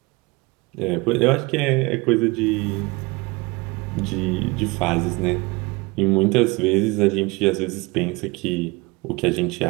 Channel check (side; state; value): left; quieter; 24.7 dB